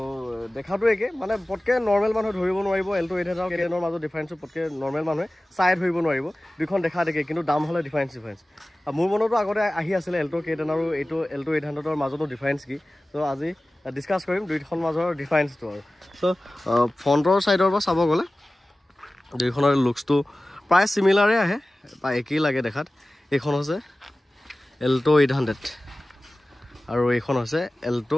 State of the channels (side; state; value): both; normal; correlation 0.97